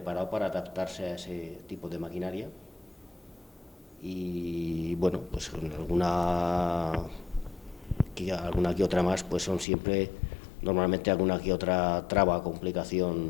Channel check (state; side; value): drops out; right; at 9.7 s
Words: para adaptarse a ese tipo de maquinaria. Y bueno, pues con alguna que otra más, pues son siempre, normalmente alguna que otra traba,